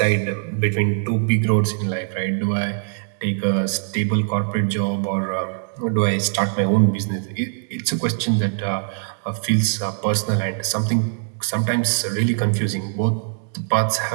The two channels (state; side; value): silent; left; digital silence